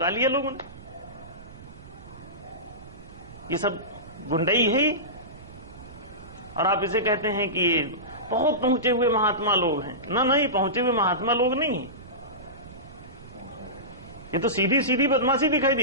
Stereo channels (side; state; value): right; noise; rumble, 18 dB below the sound